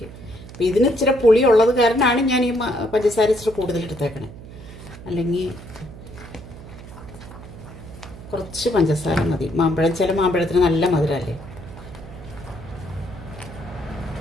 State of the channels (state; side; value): noise; right; hum, 15 dB below the sound